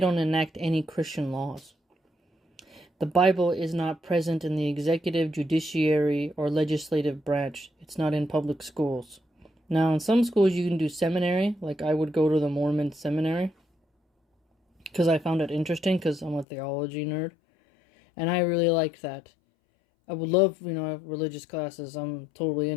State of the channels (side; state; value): right; drops out; at 16.4 s